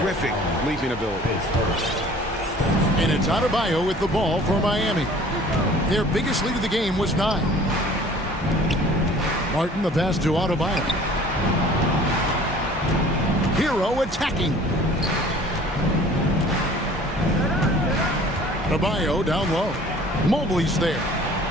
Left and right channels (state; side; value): normal; both; correlation 0.49